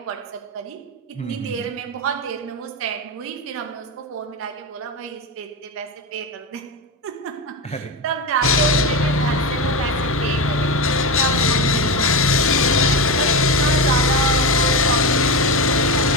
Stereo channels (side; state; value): both; normal; correlation 0.17